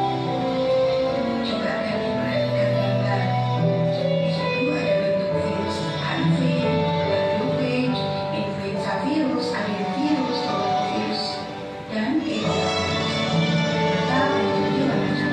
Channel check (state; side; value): identical; both; correlation 1.00